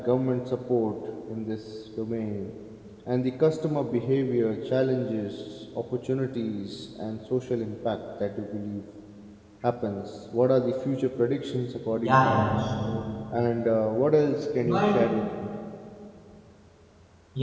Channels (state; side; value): identical; both; correlation 1.00